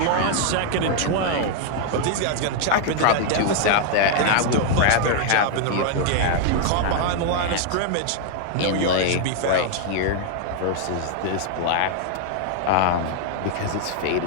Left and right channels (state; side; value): different; both; correlation 0.00